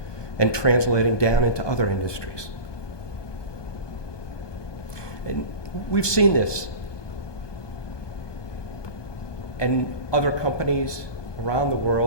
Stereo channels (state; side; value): late; right; 1.2 ms